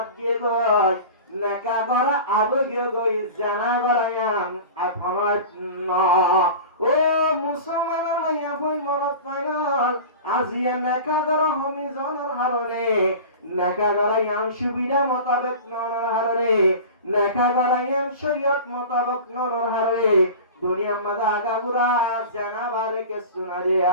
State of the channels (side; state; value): both; inverted; correlation -0.35